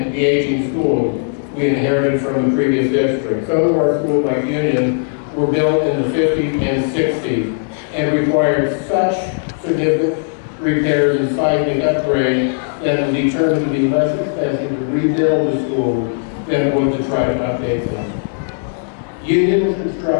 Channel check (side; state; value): right; silent; digital silence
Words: de-aging schools we inherited from the previous district. Some of our schools, like Union, were built in the 50s and 60s and required such significant repairs and seismic upgrades that it was determined to be less expensive to rebuild the schools than it was to try to update them. Union was